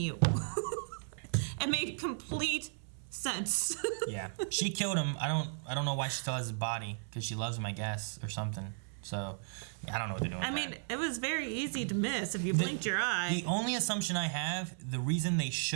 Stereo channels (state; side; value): silent; left; 54 dB below the other